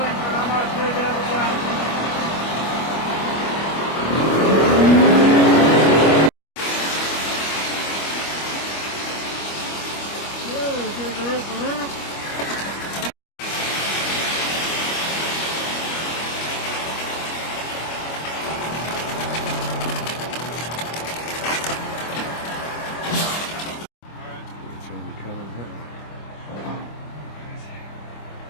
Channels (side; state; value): right; late; 25 ms